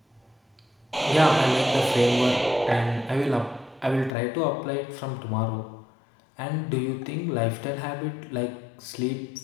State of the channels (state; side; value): drops out; right; at 4.1 s